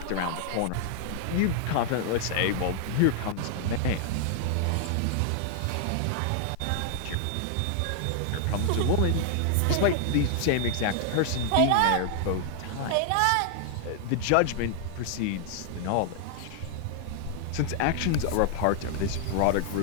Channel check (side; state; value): both; different; correlation 0.00